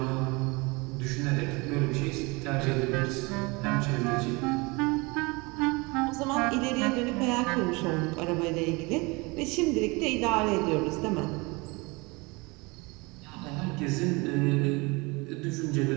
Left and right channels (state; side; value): quieter; left; 26.3 dB